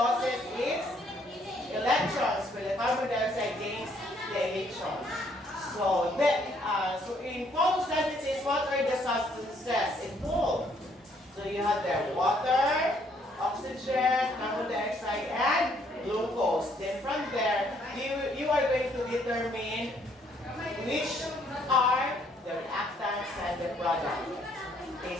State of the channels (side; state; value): both; normal; correlation 0.67